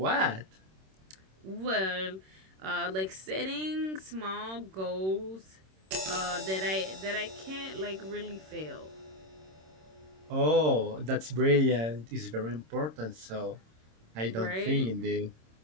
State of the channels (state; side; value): late; left; 26 ms